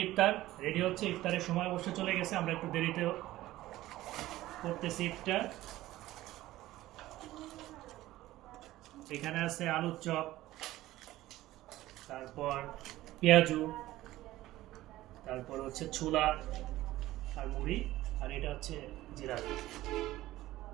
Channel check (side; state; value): left; quieter; 16.0 dB